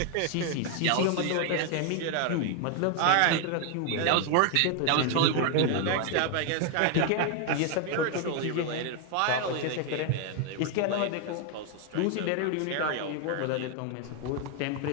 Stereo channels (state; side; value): different; both; correlation 0.01